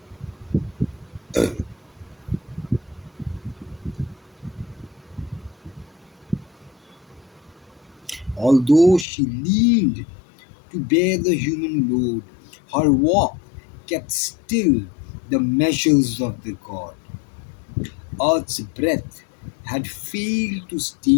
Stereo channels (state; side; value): drops out; right; at 9.1 s